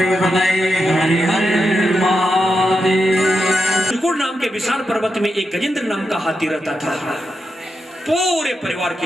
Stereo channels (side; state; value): both; normal; correlation 0.86